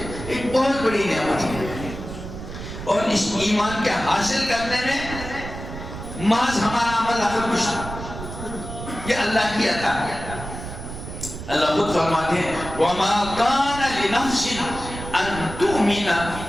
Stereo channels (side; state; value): right; noise; rumble, 10 dB below the sound